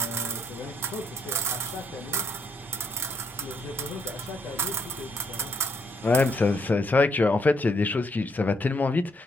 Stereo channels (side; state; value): both; normal; correlation 0.73